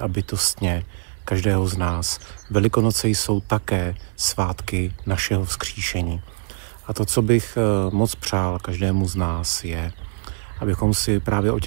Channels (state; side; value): silent; left; digital silence